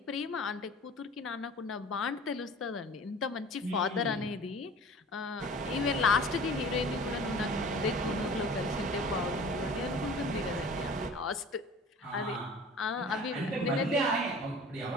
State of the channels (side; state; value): both; normal; correlation 0.43